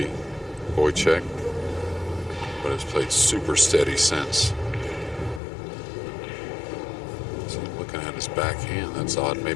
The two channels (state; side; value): drops out; right; at 5.4 s